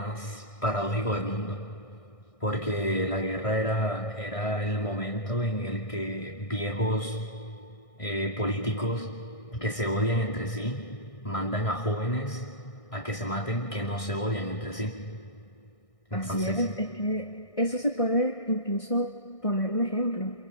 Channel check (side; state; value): right; late; 1.6 ms